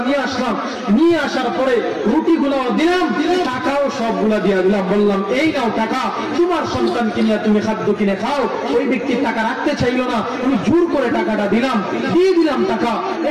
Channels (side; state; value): both; identical; correlation 1.00